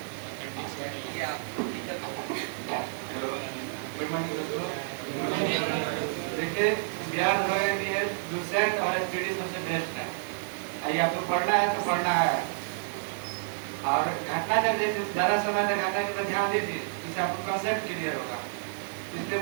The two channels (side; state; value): left; silent; 57 dB below the other